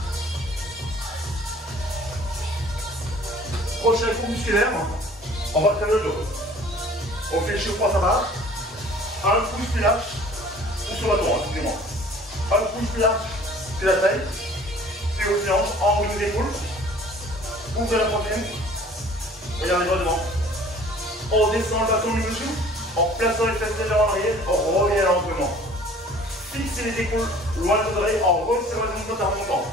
Prochain coup musculaire, on va faire le dos. On fait le chiot-poids à barre. Un pouce plus large, ou sur le bâton, excusez-moi. Un pouce plus large que la taille, puis aux hanches, en haut de l'épaule. Ouvrez la poitrine. Regardez droit devant. On descend le bâton du dessous, en plaçant les fesses légèrement en arrière, on revient lentement. Fixez les épaules loin de vos oreilles en resserrant les ongles en remontant.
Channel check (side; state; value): both; normal; correlation 0.50